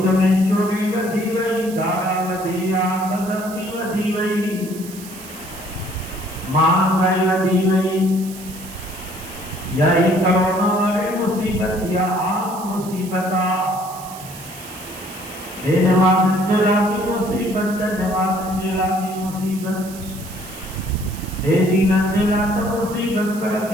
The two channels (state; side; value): noise; right; hiss, 16 dB below the sound